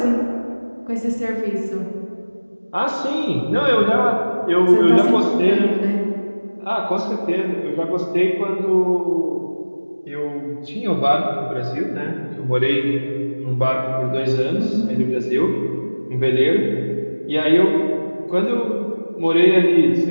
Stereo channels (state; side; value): inverted; both; correlation -1.00